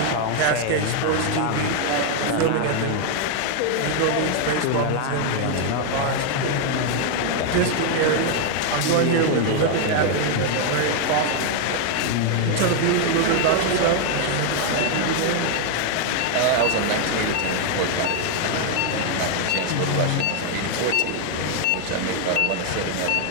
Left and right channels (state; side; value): different; both; correlation 0.00